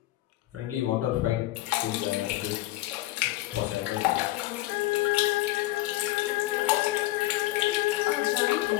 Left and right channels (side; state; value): right; quieter; 17.5 dB